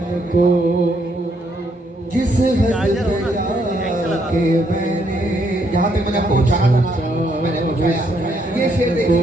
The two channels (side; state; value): both; normal; correlation 0.73